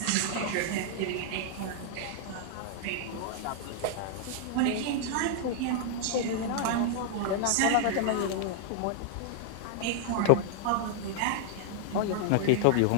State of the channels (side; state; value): both; different; correlation -0.01